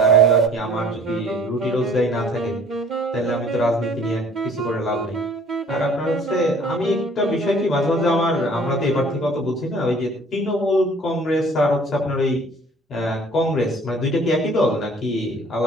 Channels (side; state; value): both; normal; correlation 0.54